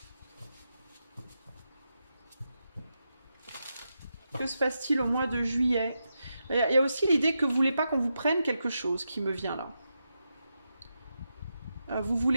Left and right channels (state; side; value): inverted; both; correlation -0.87